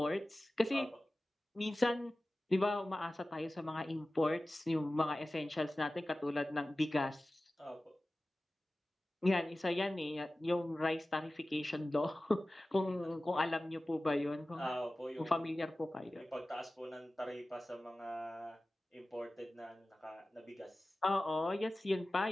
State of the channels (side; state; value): both; normal; correlation 0.96